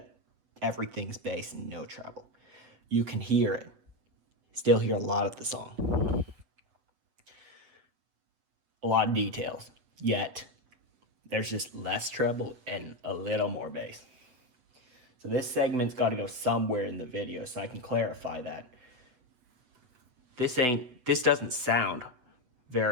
everything's bass and no treble. You can hear it. Still hear a lot of the song. A lot of details, yet there's just less treble and a little more bass. So this segment's got to go somewhere in the video so I can clarify that. This doesn't sound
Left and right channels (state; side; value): late; left; 8.0 ms